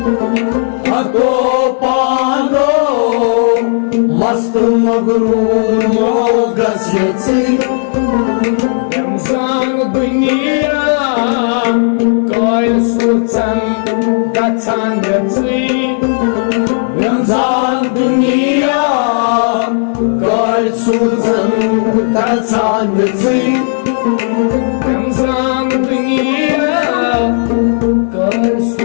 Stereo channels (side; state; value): right; silent; digital silence